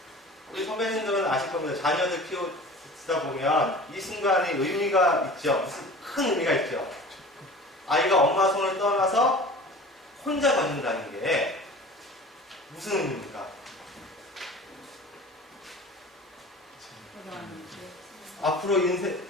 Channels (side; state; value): both; normal; correlation 0.40